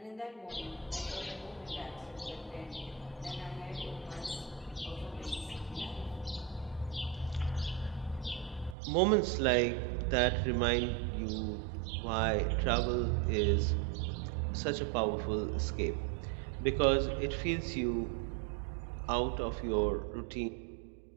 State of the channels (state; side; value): drops out; left; at 8.8 s